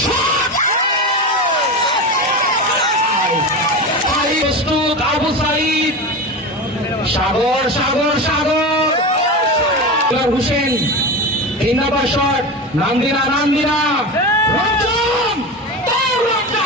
প্রস্তুত আবু সাইদ সাগর সাগর সাগর হুসেন 3 নম্বর শট নান্দিনা নান্দিনা রঞ্জন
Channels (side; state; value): both; normal; correlation 0.24